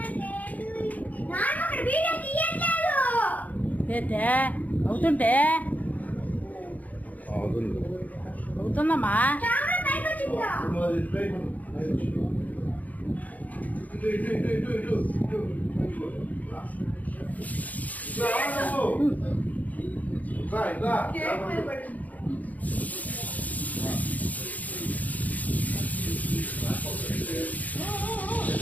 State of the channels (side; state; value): right; late; 0.077 ms